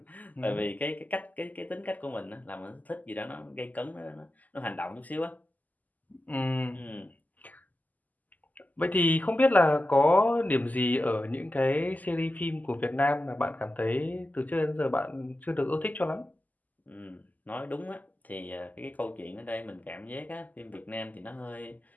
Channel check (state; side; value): late; right; 0.080 ms